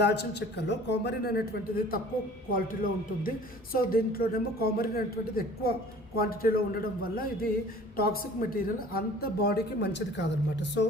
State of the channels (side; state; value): both; normal; correlation 0.48